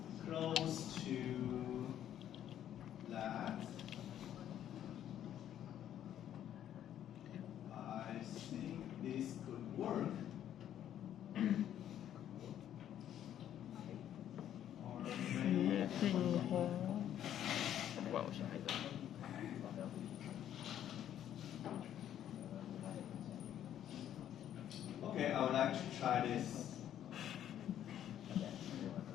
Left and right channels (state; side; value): quieter; right; 10.8 dB